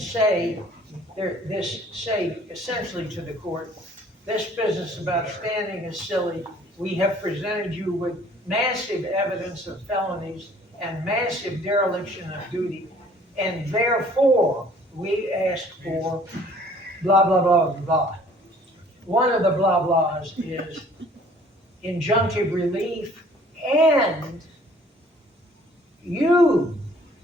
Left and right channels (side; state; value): both; normal; correlation 0.55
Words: say essentially to the court, this business about standing is silly. We have presented you with massive evidence of felonies and massive dereliction of duty, and therefore, we ask for blah, blah, blah, blah. One of the blah blahs is injunctive relief, and you,